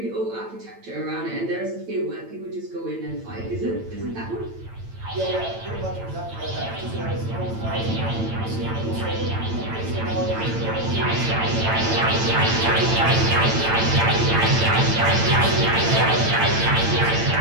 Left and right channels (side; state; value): left; late; 8.9 ms